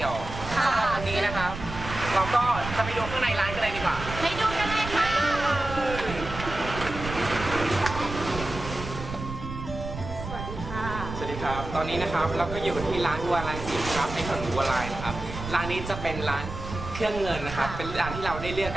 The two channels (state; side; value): noise; right; rumble, 8 dB below the sound